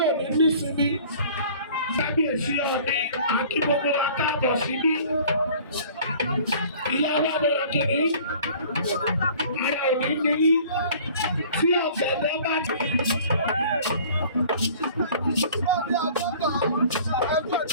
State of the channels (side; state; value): both; inverted; correlation -0.49